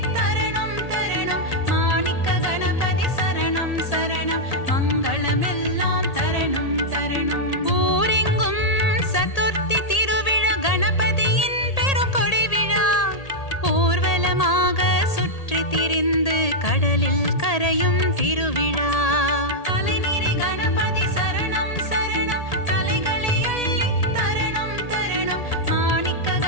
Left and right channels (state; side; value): late; right; 1.8 ms